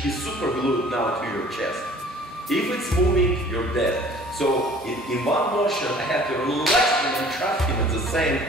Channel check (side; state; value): both; normal; correlation 0.51